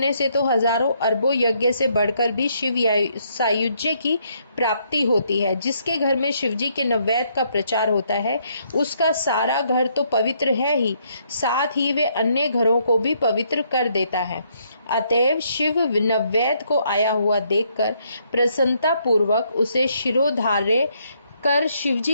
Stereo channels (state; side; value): inverted; both; correlation -0.72